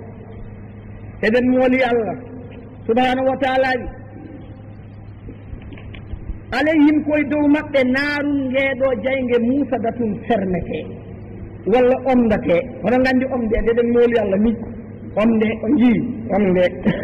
eɗen mooli allah subhanahu wa taala wi alayhim koye dow maɓɓe naarum ngeeɗo jayge musadatun fernete walla omdate hono gandi omde eɗen mooli allah ni omde o jii omde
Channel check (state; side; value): identical; both; correlation 1.00